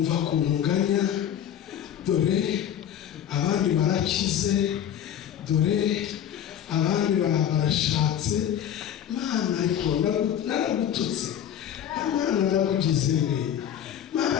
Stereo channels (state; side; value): quieter; right; 9.9 dB